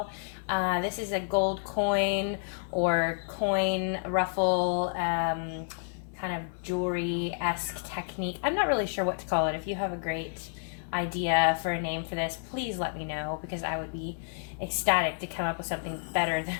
This is a gold coin or coin ruffle kind of jewelry-esque technique. I'm not really sure what to call it. If you have a great idea for a name for this, please let me know because I would be ecstatic to come up with something better than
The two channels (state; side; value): silent; right; 58 dB below the other